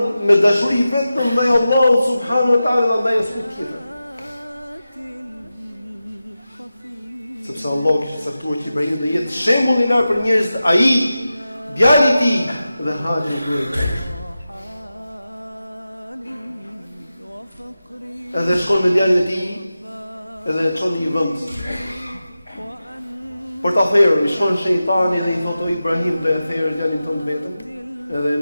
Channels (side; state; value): both; inverted; correlation -0.93